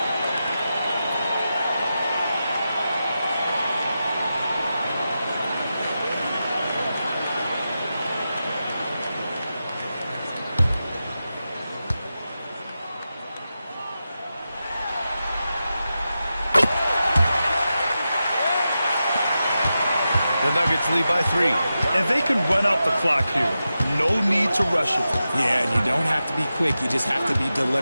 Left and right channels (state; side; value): inverted; both; correlation -0.91